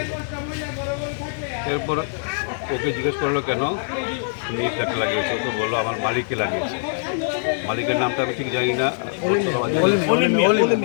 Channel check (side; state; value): right; silent; digital silence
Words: এরপর ওকে জিজ্ঞেস করলো কেন তুমি ফ্ল্যাগটা লাগিয়েছে, তো বললো আমার মালিককে লাগিয়েছে। মালিকের নামটা আমি ঠিক জানি না,